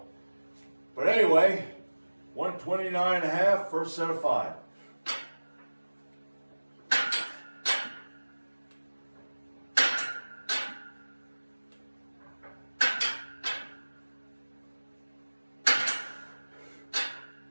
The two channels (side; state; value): both; inverted; correlation -1.00